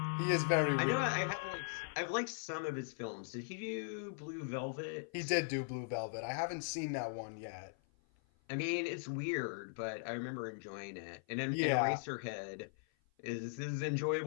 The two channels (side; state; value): right; silent; 52 dB below the other